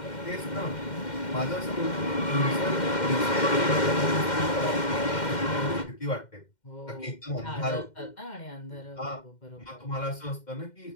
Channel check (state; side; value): late; right; 2.1 ms